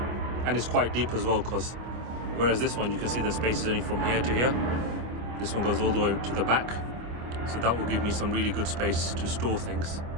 and it's quite deep as well, because whereas this one you can see the space is only from here to here, this one goes all the way to the back, so that will give me some really good space to store things.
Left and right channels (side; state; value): left; late; 25 ms